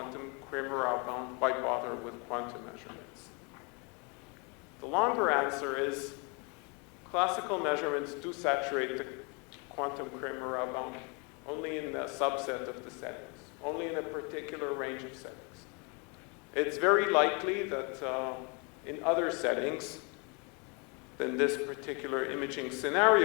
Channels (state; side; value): quieter; right; 32.7 dB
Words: Kramer-Rao bound, why bother with quantum measurements? The longer answer is, classical measurements do saturate the quantum Kramer-Rao bound only in a subset of the settings, only in a particular range of settings. It's very likely that in other settings than this particular imaging